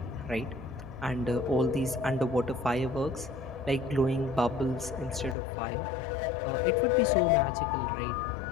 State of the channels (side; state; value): right; drops out; at 5.4 s